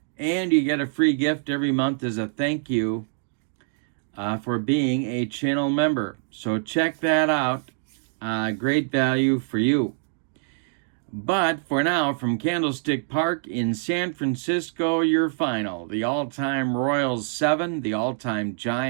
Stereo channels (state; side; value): silent; left; digital silence